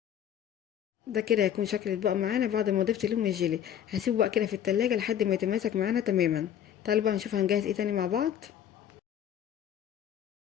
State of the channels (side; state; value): right; quieter; 9.9 dB